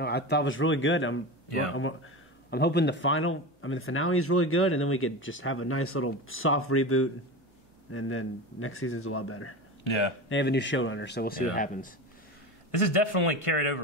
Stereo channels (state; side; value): normal; both; correlation 0.26